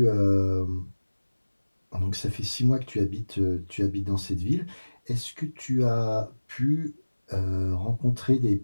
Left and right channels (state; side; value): inverted; both; correlation -1.00